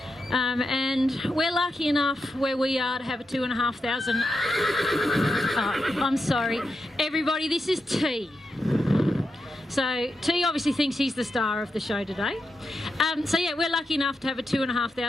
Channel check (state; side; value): normal; both; correlation 0.87